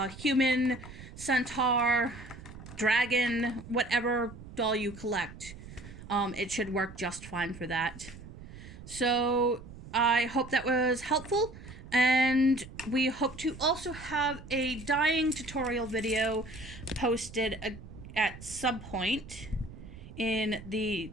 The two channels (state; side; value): noise; right; rumble, 15 dB below the sound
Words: human, centaur, dragon, whatever doll you collect. It should work just fine for that. So I hope that was helpful, and we hope to also have a dyeing tutorial video posted at some point in the